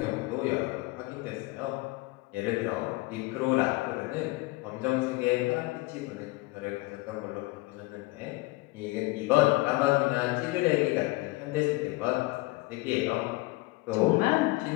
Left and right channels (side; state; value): right; quieter; 22.0 dB